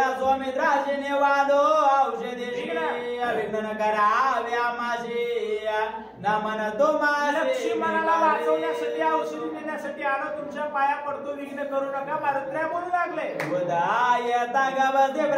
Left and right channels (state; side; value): identical; both; correlation 1.00